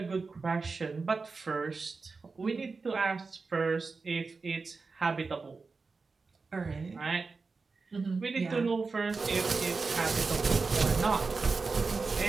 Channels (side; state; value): left; quieter; 4.3 dB